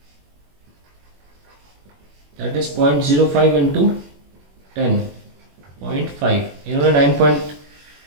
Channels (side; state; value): left; late; 21 ms